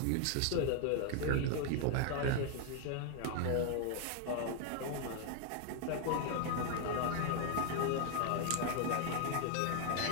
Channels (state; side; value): different; both; correlation 0.00